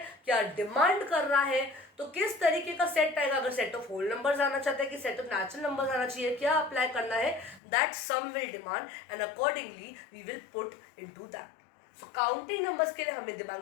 क्या डिमांड कर रहा है, तो किस तरीके का सेट आएगा. अगर सेट ऑफ होल नंबर्स आना चाहता है कि सेट ऑफ नेचुरल नंबर्स आना चाहिए, क्या अप्लाई करना है, that some will demand and accordingly we will put into that. So counting numbers के लिए हमें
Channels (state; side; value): drops out; right; at 7.6 s